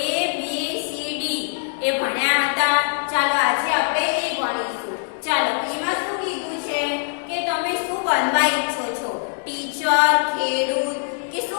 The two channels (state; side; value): silent; right; digital silence